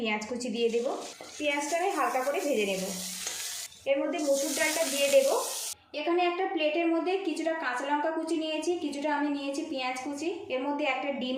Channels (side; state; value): both; identical; correlation 1.00